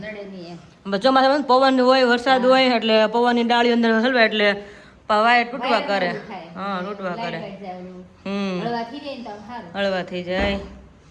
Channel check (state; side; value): identical; both; correlation 1.00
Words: ચોમાસામાં પવન હોય, વરસાદ હોય એટલે પવનની ડાળી અંદર હલવે એટલે વાયર તૂટવા કરે. હા તૂટવા કરે. હળવા થઈ જાય.